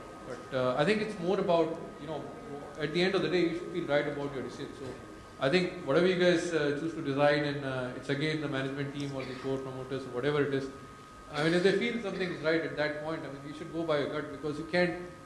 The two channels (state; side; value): identical; both; correlation 1.00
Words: But I think it's more about, at the end of the day, you should feel right about your decision. So I think whatever you guys choose to design, and it's again the management team or the core promoters or whatever it is. I mean, if they feel something is right at that point, I mean, you should go by your gut, because you can't,